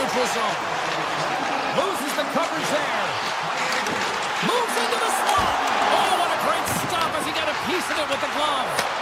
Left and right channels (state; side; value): identical; both; correlation 1.00